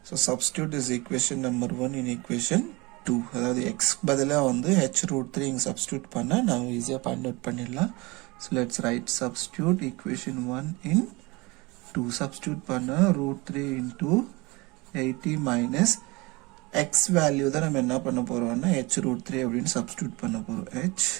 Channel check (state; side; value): quieter; left; 24.5 dB